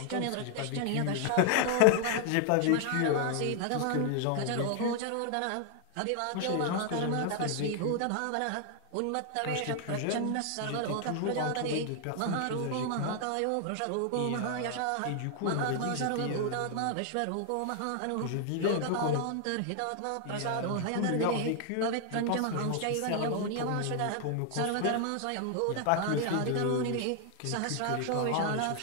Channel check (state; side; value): different; both; correlation 0.00